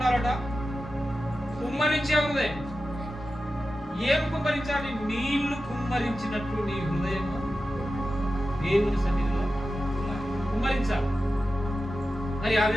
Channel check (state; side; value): normal; both; correlation 0.92